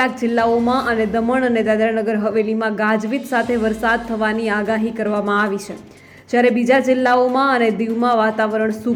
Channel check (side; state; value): both; identical; correlation 1.00